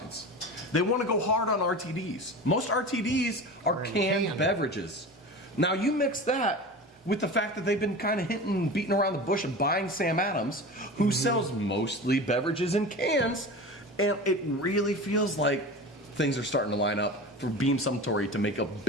They want to go hard on RTDs. Most RTDs are canned beverages. Now you mix that with the fact that they've been kind of beating around the bush of buying Sam Adams, who sells mostly beverages in cans, and it really feels like things are starting to line up for Beam Suntory to make a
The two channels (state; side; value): normal; both; correlation 0.31